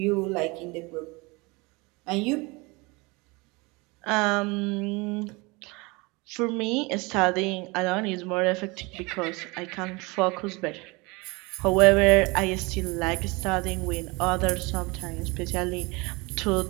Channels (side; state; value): left; quieter; 25.8 dB